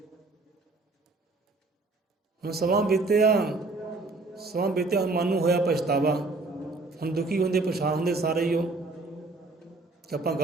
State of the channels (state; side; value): quieter; left; 3.4 dB